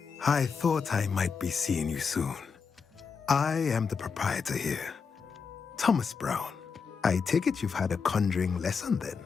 I thought I might be seeing you soon. I am the proprietor here. Thomas Brown, I take it you've had a conjuring lesson then?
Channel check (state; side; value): quieter; right; 5.6 dB